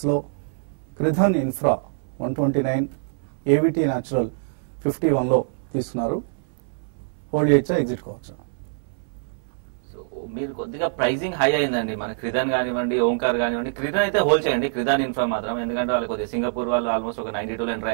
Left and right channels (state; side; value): silent; left; 59 dB below the other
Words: క్రిధన్ ఇన్ఫ్రా 129, ఏవిటీ న్యాచురల్ 51లో తీసుకున్నారు. హోల్డ్ చేయొచ్చా, ఎగ్జిట్ కావచ్చా? సో మీరు కొద్దిగా ప్రైసింగ్ హై అయిందండి. మన క్రిదాన్ కానివ్వండి, ఓంకార్ కానివ్వండి. క్రిదాన్ అయితే హోల్డ్ చేయండి, క్రిదాన్ ఇన్ఫ్రా మాత్రం. ఎందుకంటే వాళ్ళు కొద్దిగా సింగపూర్ వాళ్ళు ఆల్మోస్ట్ ఒక 92లో ఎంటర్